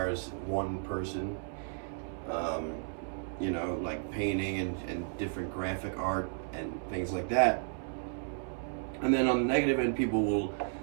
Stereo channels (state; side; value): silent; left; 56 dB below the other